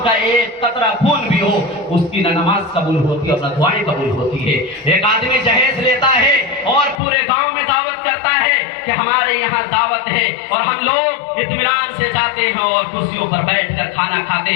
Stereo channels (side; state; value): right; drops out; at 7.0 s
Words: کا ایک قطرہ خون بھی ہو اس کی نہ نماز قبول ہوتی ہے اور نہ دعائیں قبول ہوتی ہے. ایک آدمی جہیز لیتا ہے اور پورے گاؤں میں دعوت کرتا ہے کہ ہمارے یہاں دعوت ہے, اور ہم لوگ اطمینان سے جاتے ہیں اور کرسیوں پر بیٹھ کر کھانا کھاتے